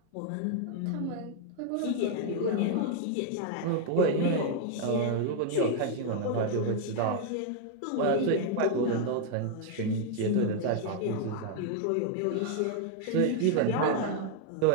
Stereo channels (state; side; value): different; both; correlation 0.00